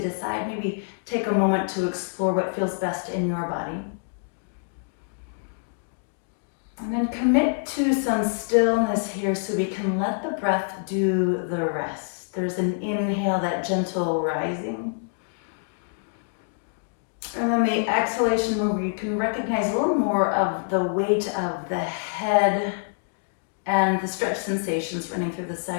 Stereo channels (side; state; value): right; silent; digital silence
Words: Maybe take a moment to explore what feels best in your body. And then commit to some stillness here so we can let the breath do the rest. There's an inhale, that gentle rising. And then the exhalation where you can recognize a little more of the weight of the head and the stretch sensations running through the